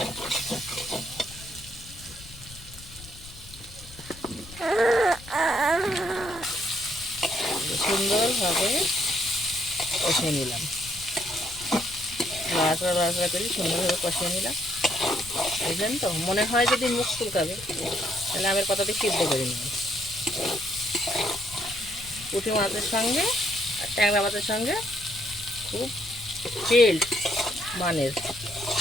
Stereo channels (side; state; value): left; noise; rumble, 18 dB below the sound